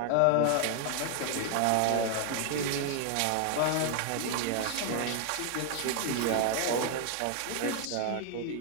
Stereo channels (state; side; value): different; both; correlation 0.00